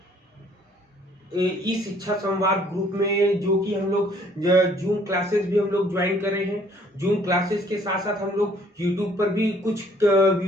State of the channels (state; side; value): normal; both; correlation 0.60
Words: इस शिक्षा संवाद ग्रुप में जो कि हम लोग जूम क्लासेस भी हम लोग ज्वाइन कर रहे हैं। जूम क्लासेस के साथ साथ हम लोग यूट्यूब पर भी कुछ